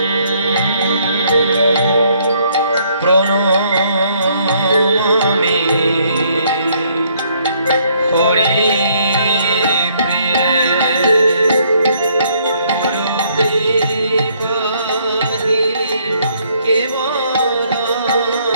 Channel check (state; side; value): inverted; both; correlation -0.67